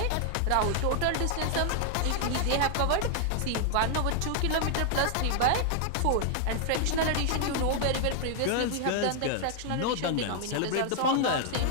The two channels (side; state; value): both; different; correlation 0.00